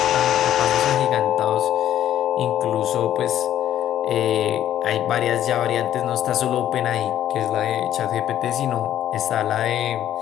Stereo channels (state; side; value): quieter; right; 11.5 dB